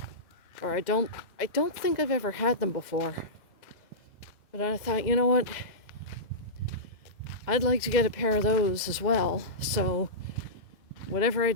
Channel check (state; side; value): late; right; 2.0 ms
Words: or I don't think I've ever had them before. But I thought, you know what, I'd like to get a pair of those as well. So whatever I